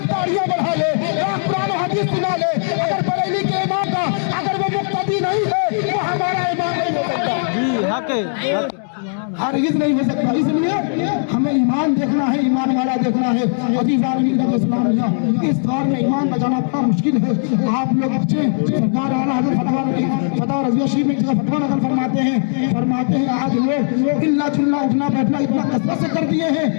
दाढ़ियां बढ़ा ले, लाख कुरान हदीस सुना ले, अगर बरेली के इमाम का अगर वो मुक्तदी नहीं है तो हमारा इमाम नहीं हो सकता। जी हक है, हरगिज़ नहीं हो सकता। इसलिए हमें ईमान देखना है, ईमान वाला देखना है। अज़ीज़ान इस्लामिया, इस दौर में ईमान बचाना बड़ा मुश्किल है। आप लोग बच्चे, सरकार आला हज़रत फतवा रज़िया शरीफ में फतवा नकल फरमाते हैं आज लोग इल्ला चुल्ला उठना बैठना इतना कसरत से कर दिए हैं,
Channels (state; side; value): silent; right; digital silence